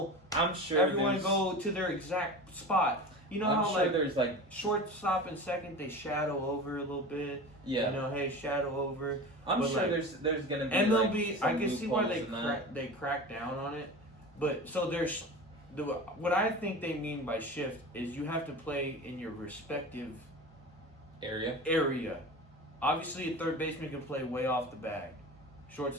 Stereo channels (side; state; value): both; normal; correlation 0.32